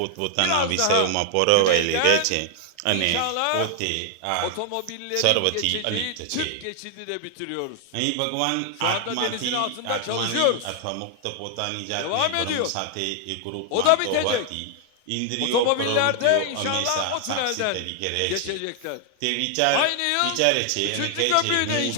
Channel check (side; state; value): both; different; correlation 0.00